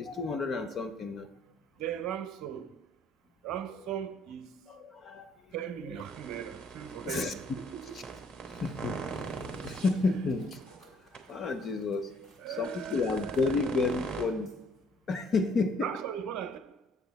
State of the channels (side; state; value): both; normal; correlation 0.62